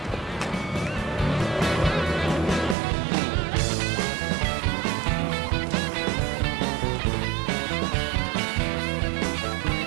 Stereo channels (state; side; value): drops out; left; at 2.8 s